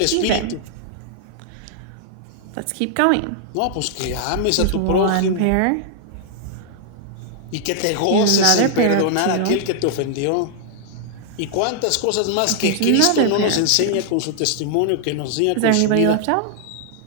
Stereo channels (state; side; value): different; both; correlation -0.01